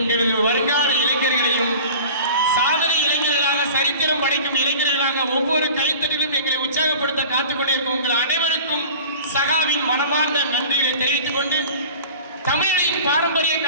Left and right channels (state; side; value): inverted; both; correlation -0.40